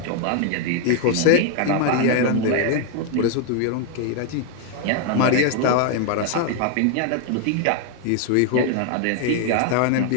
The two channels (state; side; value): different; both; correlation 0.00